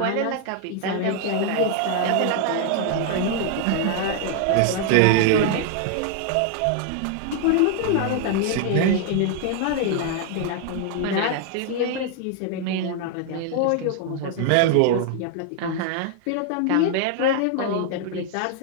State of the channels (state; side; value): different; both; correlation 0.00